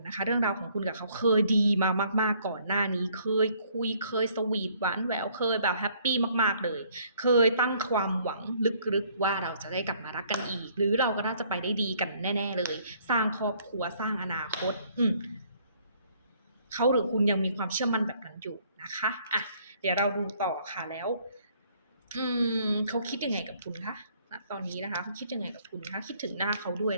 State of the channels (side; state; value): both; inverted; correlation -0.63